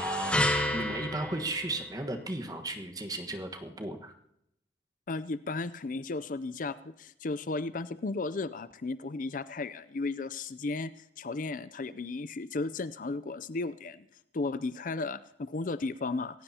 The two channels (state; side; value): normal; both; correlation 0.48